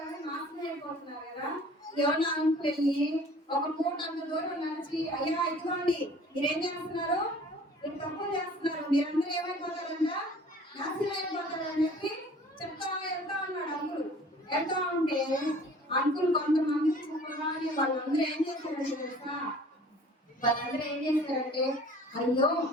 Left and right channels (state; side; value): normal; both; correlation 0.49